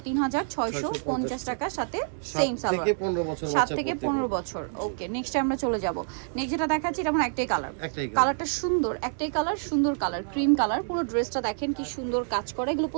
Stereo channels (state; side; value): silent; left; digital silence